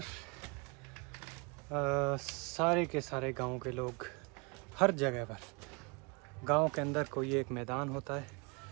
सारे के सारे गांव के लोग हर जगह पर, गांव के अंदर कोई एक मैदान होता है,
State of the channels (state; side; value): quieter; left; 30.7 dB